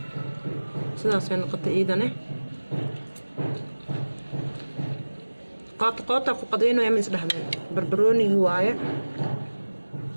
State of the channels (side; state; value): both; inverted; correlation -1.00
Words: سداسين نقطة ايدانه قاطع فقدينه يا مس دحمه بربروني هوايه